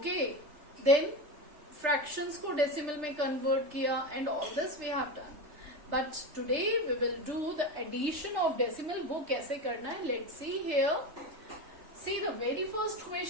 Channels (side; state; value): left; late; 3.3 ms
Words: then fractions को decimal में convert किया, and all this we have done. But today we will do the addition of decimal. वो कैसे करना है? Let's see here. See the very first